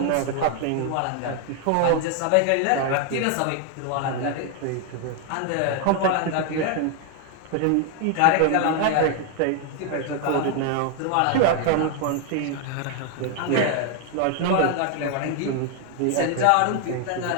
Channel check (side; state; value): both; different; correlation 0.00